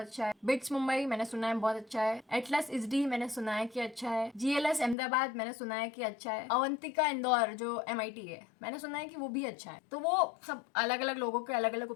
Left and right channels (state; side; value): drops out; right; at 5.0 s